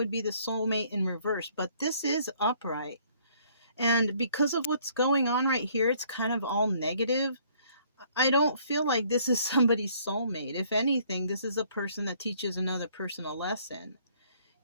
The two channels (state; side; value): inverted; both; correlation -0.61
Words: be the soulmate in reverse, but this is upright. And because of what's going on right here, it's kind of all negative. I don't feel like this is somebody's soulmate. If anything, this is a person that teaches another person a lesson,